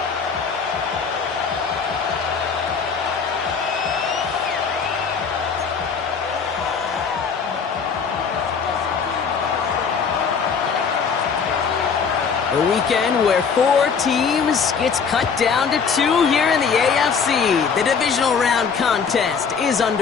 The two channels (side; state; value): right; quieter; 5.9 dB